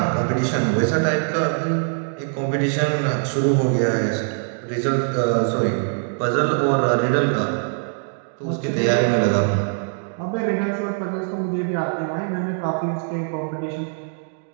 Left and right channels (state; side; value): silent; left; 64 dB below the other